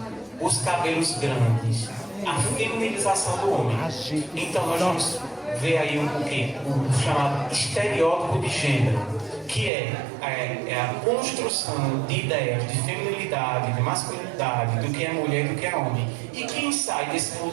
os cabelos grandes, a feminilização do homem. Então nós vamos ver aí o chamado estereótipo de gênero, que é a construção de ideias de feminilidade, de masculinidade, do que é mulher e do que é homem. E quem sai desse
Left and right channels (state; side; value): drops out; left; at 9.7 s